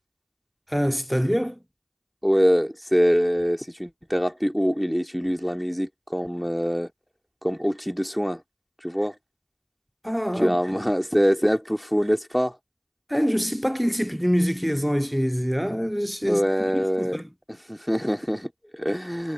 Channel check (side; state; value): both; identical; correlation 1.00